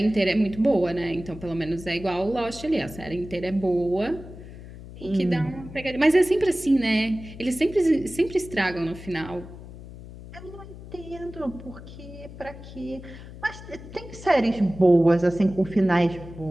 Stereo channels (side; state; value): left; noise; hum, 15 dB below the sound